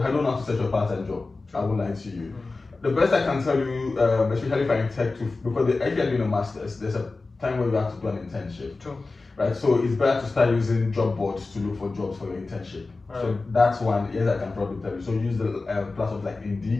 don't know how to search for a part-time job. I won't lie to you. The best I can tell you, especially if I'm in tech, because if you're doing a master's, there's a time where you have to do an internship. True. Right, so it's better to start using job boards to look for jobs for your internship. Right. So that's one, yes, I can probably tell you. So use the platforms like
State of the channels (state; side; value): quieter; right; 3.6 dB